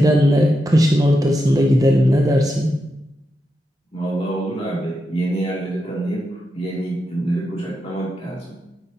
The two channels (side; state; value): both; normal; correlation 0.86